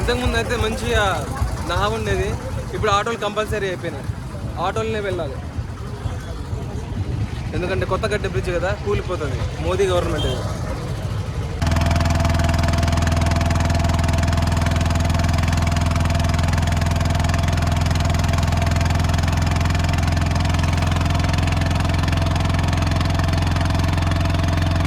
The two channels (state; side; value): identical; both; correlation 1.00